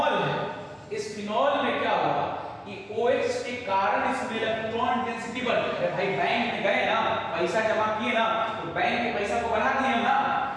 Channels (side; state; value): both; identical; correlation 1.00